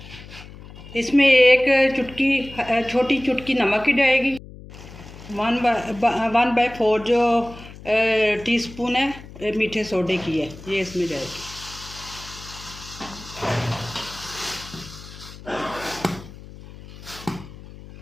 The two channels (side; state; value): left; noise; hum, 17 dB below the sound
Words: इसमें 1 चुटकी, छोटी चुटकी नमक की जाएगी। 1/4 जो टीस्पून है मीठे सोडे की है, ये इसमें जाएगी।